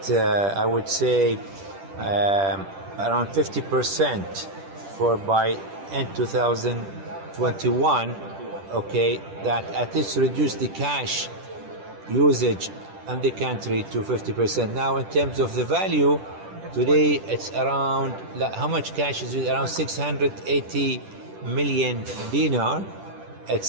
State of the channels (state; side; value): late; left; 10 ms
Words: I would say, around 50% for by end 2021. Okay, that at least reduce the cash usage in the country to 50%. Now, in terms of the value, today it's around, how much cash is it? Around 680 million dinar.